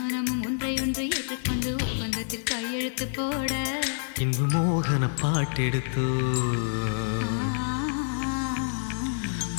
ஒன்றை ஒன்று ஏற்றுக்கொண்டு ஒப்பந்தத்தில் கையெழுத்து போட. இன்பு மோகன பாட்டெடுத்தோ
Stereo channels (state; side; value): silent; right; digital silence